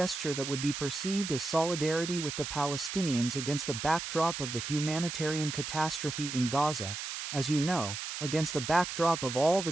that would be perceived as solidarity with the Palestinians against the backdrop of the humanitarian catastrophe in Gaza, as you know, against the backdrop of all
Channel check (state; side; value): noise; right; hiss, 6 dB below the sound